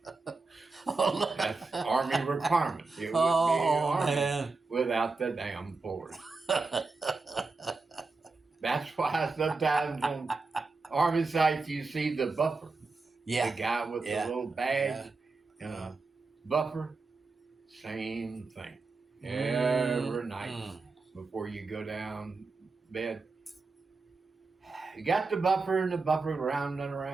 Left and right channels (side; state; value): left; quieter; 3.9 dB